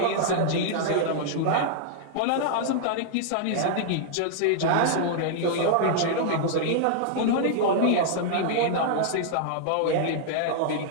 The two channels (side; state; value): both; different; correlation -0.01